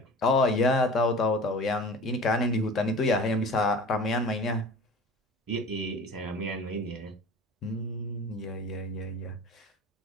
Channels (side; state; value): both; normal; correlation 0.39